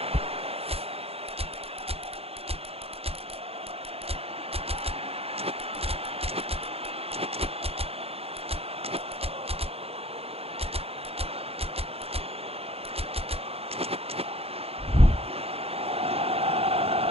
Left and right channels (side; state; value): left; late; 0.29 ms